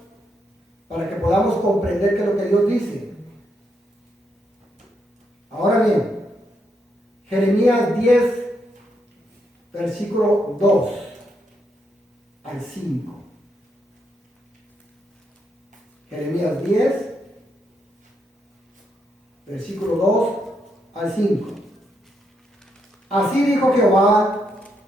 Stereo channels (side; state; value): both; normal; correlation 0.79